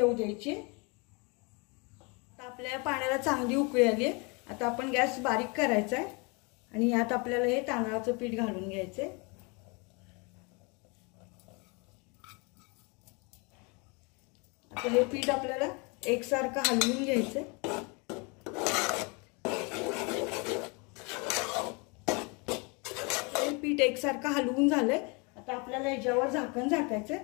द्यायची। आता आपल्या या पाण्याला चांगली उकळी आली आहे। आता आपण गॅस बारीक करायचा आहे आणि यात आपल्याला हे तांदळाचं पीठ घालून घ्यायचे। आता हे पीठ आपल्याला एकसारखं हलवून घ्यायचे। हे पीठ एकसारखं हलवून झालंय। आता आपल्याला याच्यावर झाकण झाकायचं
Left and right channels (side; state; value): right; quieter; 30.8 dB